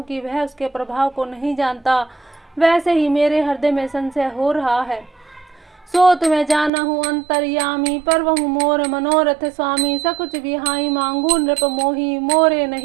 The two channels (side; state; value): left; drops out; at 6.7 s